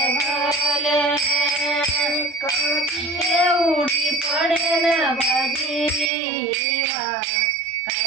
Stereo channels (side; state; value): left; drops out; at 6.1 s